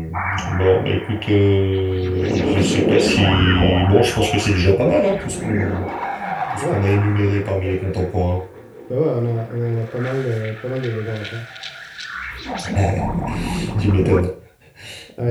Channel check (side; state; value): both; identical; correlation 1.00